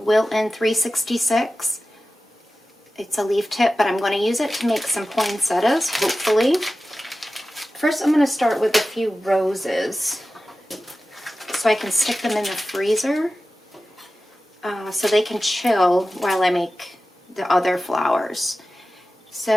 366. It's a leaf tip, but I'm going to use it to make some poinsettias, hopefully. First, I'm going to start with a few roses so I can stick them in the freezer so they can chill while I make the other flowers.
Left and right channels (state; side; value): normal; both; correlation 0.95